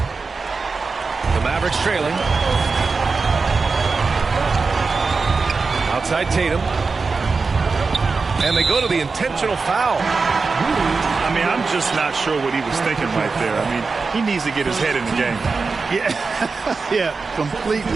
Mavericks trailing. Outside Tatum. And they go to the intentional foul. I mean, I'm just not sure what he was thinking right there. I mean, he needs to get his head in the game. Yeah,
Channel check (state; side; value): quieter; left; 4.4 dB